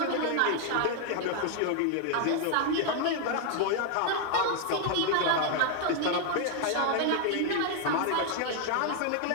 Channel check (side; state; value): both; different; correlation 0.00